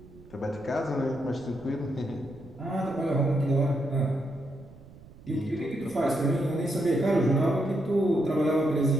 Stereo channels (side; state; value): right; noise; rumble, 22 dB below the sound